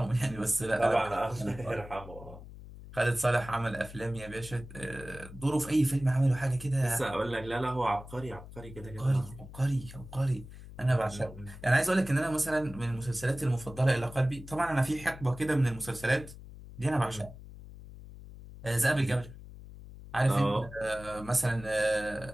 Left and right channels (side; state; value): left; noise; hum, 15 dB below the sound